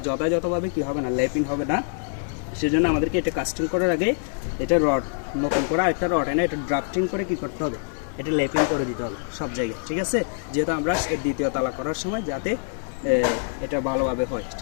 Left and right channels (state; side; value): silent; right; digital silence